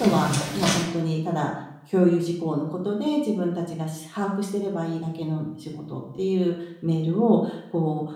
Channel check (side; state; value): both; identical; correlation 1.00